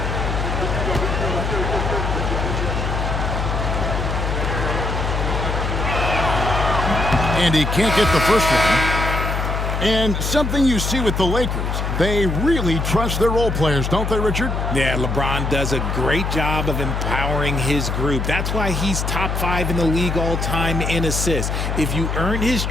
And he can't get the first one. And something you see with the Lakers, they really trust their role players, don't they, Richard? Yeah, LeBron does a great job of empowering his group. That's why he's top 5 in the league all time in assists. If you earn his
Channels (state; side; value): noise; left; hum, 1 dB below the sound